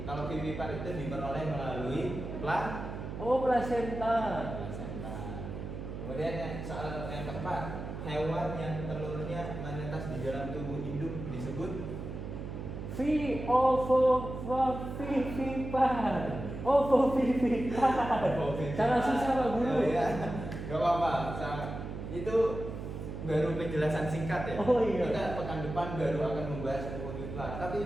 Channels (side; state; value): right; noise; hum, 7 dB below the sound